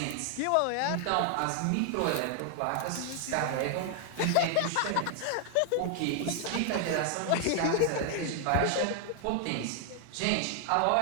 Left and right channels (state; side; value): different; both; correlation 0.00